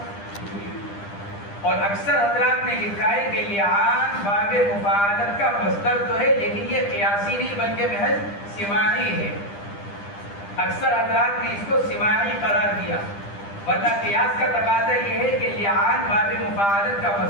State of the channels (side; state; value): right; late; 10 ms